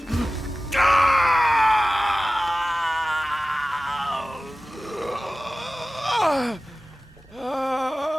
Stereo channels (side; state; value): both; normal; correlation 0.96